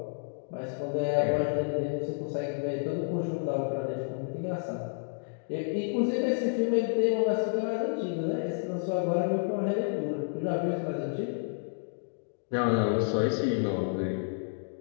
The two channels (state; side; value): silent; right; digital silence